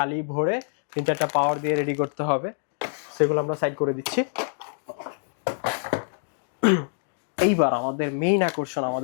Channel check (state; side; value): silent; right; digital silence